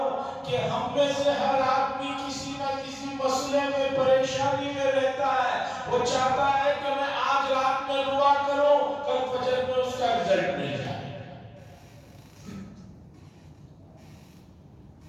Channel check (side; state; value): both; identical; correlation 1.00